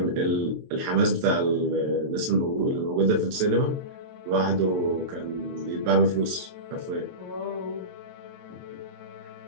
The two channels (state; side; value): late; left; 23 ms